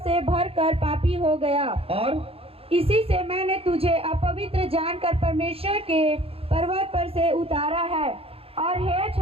भरकर पापी हो गया, और इसी से मैंने तुझे अपवित्र जानकर परमेश्वर के पर्वत पर से उतारा है। और हे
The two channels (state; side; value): late; left; 0.28 ms